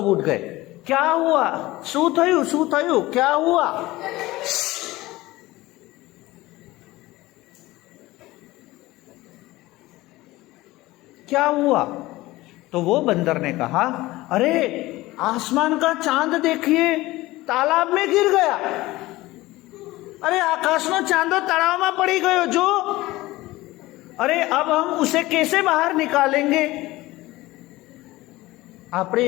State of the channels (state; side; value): quieter; right; 18.8 dB